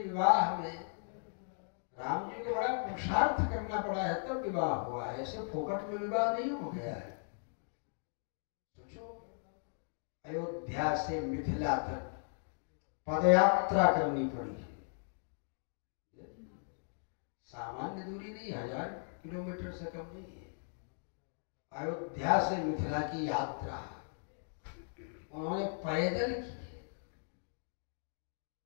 विवाह में राम जी को बड़ा पुरुषार्थ करना पड़ा है तब विवाह हुआ है, ऐसे फोकट में विवाह नहीं हो गया है। सोचो, अयोध्या से मिथिला तक पदयात्रा करनी पड़ी है। सामान्य दूरी नहीं, 1000 किलोमीटर से कम नहीं है। अयोध्या से मिथिला की यात्रा उन्होंने पैदल की है।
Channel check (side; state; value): right; silent; digital silence